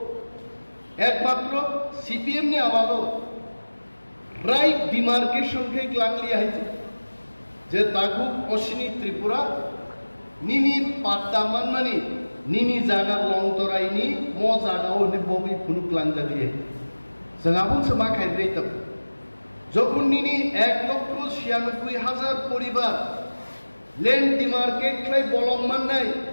एकमात्र सीपीएम ने आमालो राइट डिमार्केशन के ग्लांगली आइছে जे ताकु पश्चिमी त्रिपुरा निनी पाट्टा मानमानि निनी जागा लंतरायनि म जागाव नि बबि फुनुक लांजालिए जोंहाबो समा खायद्रायतब যখন নিনি 1,96,000 পরিবার ল্যান্ড ডিমার্কেট খাই বলংমান নাই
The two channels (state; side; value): inverted; both; correlation -1.00